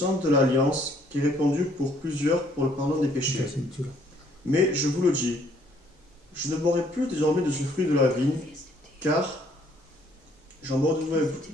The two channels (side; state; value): both; normal; correlation 0.64